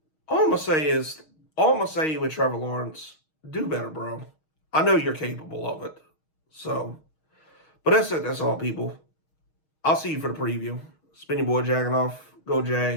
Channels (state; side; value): late; right; 6.4 ms